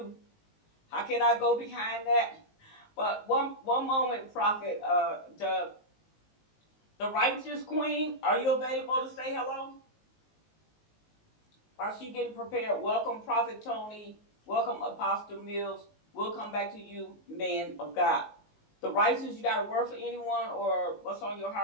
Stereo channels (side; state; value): right; late; 19 ms